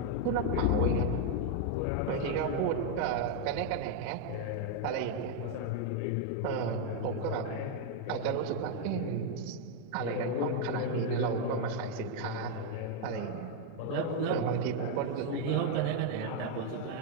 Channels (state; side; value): different; both; correlation 0.01